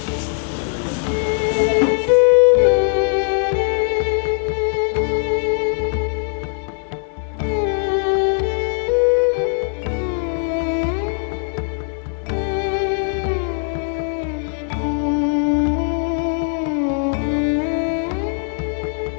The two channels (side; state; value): right; silent; 62 dB below the other